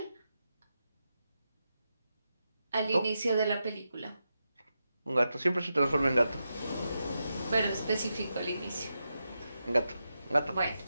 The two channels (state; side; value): inverted; both; correlation -0.88